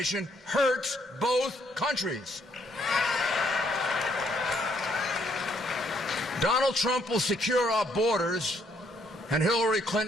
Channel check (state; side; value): normal; both; correlation 0.70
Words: hurts both countries. Donald Trump will secure our borders, and Hillary